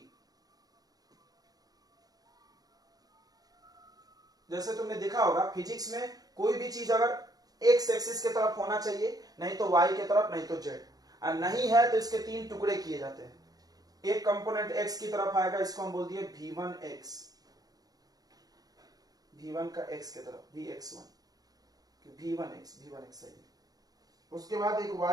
जैसे तुमने देखा होगा फिजिक्स में, कोई भी चीज अगर एक्स एक्सिस के तरफ होना चाहिए, नहीं तो वाई के तरफ, नहीं तो जेड, और नहीं है तो इसके 3 टुकड़े किए जाते हैं। एक कंपोनेंट एक्स की तरफ आएगा, इसको हम बोल दिए v1x, v1 का x के तरफ vx1, v1x सही। उसके बाद एक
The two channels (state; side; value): late; left; 0.18 ms